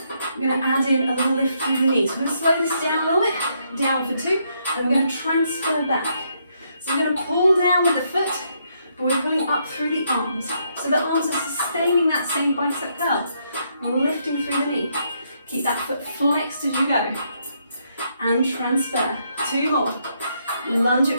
We're going to add in a little lift through the knees. We're going to slow this down a little bit, down for 2, and we're going to transfer back. So we're going to pull down with the foot, but we're pulling up through the arms. So the arms are sustaining that same bicep curl, lifting through the knee. Keep that foot flexed as you go. And transfer. 2 more. Lunge it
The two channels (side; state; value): both; inverted; correlation -0.75